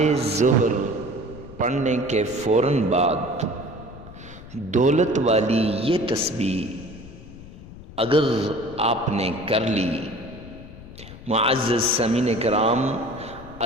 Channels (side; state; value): left; noise; rumble, 16 dB below the sound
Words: ظہر پڑھنے کے فوراً بعد دولت والی یہ تسبیح اگر آپ نے کر لی، معزز سامعین کرام،